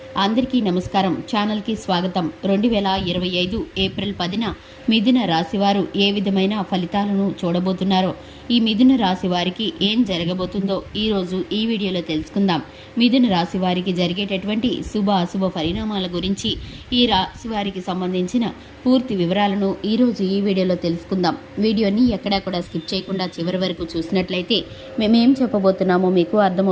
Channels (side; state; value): both; identical; correlation 1.00